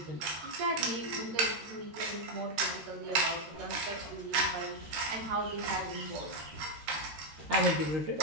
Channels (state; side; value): late; left; 13 ms